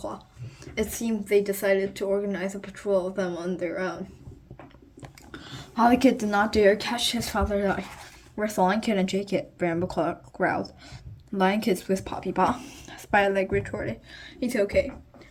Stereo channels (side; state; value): both; identical; correlation 1.00